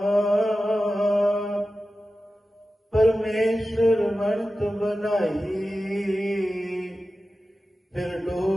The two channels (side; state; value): both; normal; correlation 0.94